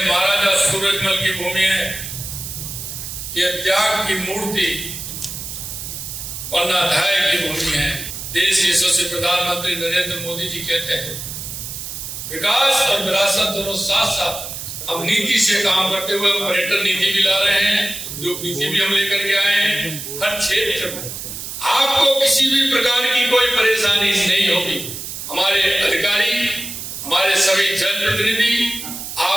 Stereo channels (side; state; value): right; noise; hiss, 8 dB below the sound